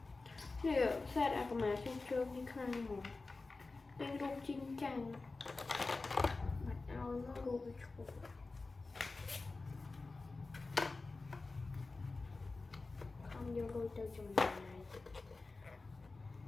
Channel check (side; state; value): right; quieter; 3.6 dB